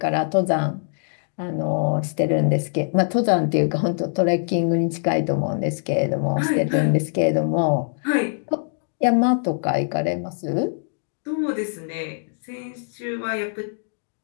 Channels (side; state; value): right; silent; digital silence